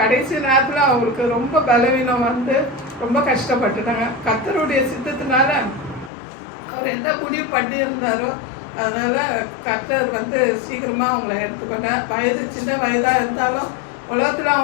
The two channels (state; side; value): drops out; right; at 6.1 s